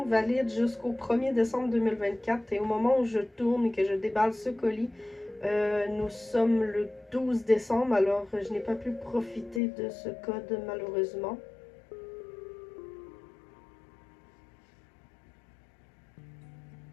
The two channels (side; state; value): right; drops out; at 9.6 s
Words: valide jusqu'au 1er décembre 2024. Et au moment où je tourne et que je déballe ce colis, nous sommes le 12 décembre. Alors, je n'ai pas pu profiter de ce code, malheureusement.